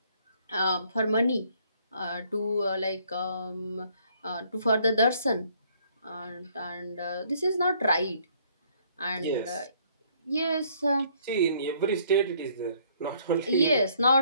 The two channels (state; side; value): inverted; both; correlation -0.64